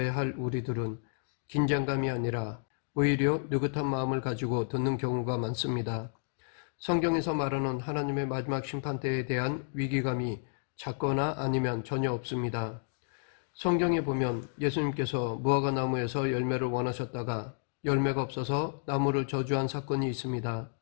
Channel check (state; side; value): silent; right; digital silence